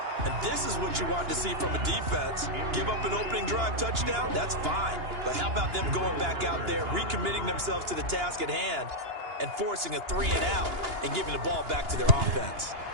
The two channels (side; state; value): left; late; 2.9 ms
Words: And this is what you want to see from a defense. Give up an opening drive touchdown, that's fine. But how about them going back out there, recommitting themselves to the task at hand, and forcing a 3-and-out and giving the ball back to their offense.